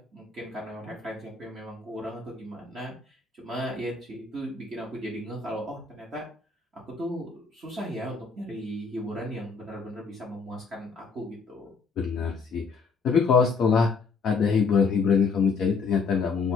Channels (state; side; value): quieter; right; 4.7 dB